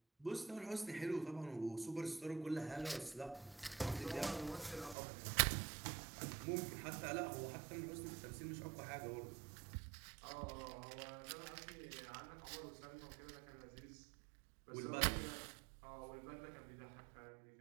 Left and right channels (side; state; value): left; drops out; at 5.0 s